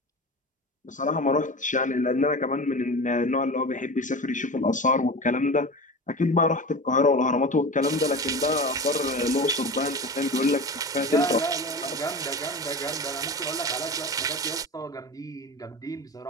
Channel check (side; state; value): both; normal; correlation 0.30